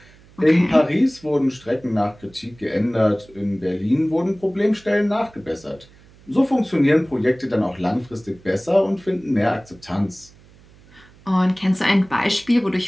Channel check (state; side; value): noise; right; hum, 26 dB below the sound